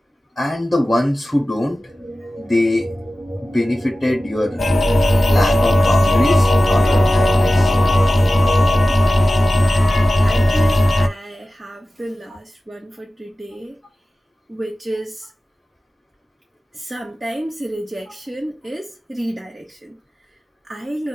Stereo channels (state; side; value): normal; both; correlation 0.95